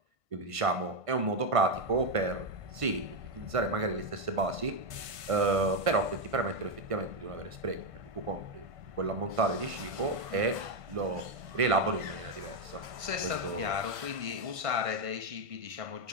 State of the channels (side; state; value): left; late; 1.5 ms